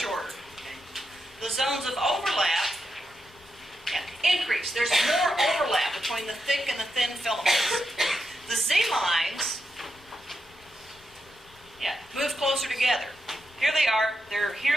Okay. The zones of overlap, yeah, increase. There's more overlap between the thick and the thin filaments. The Z lines, yeah, move closer together. Here they are.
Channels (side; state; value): both; normal; correlation 0.86